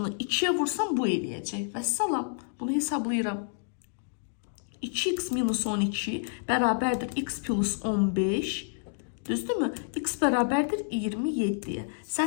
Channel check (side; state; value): right; silent; digital silence